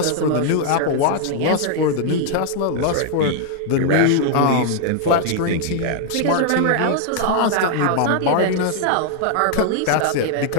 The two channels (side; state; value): both; different; correlation 0.00